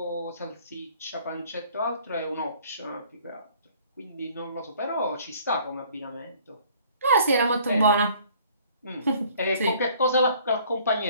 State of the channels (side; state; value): both; inverted; correlation -0.56